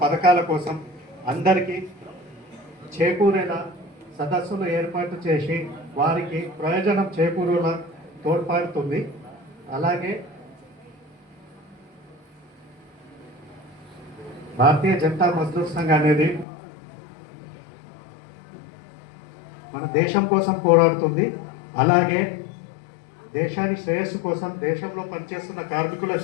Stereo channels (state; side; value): drops out; right; at 16.4 s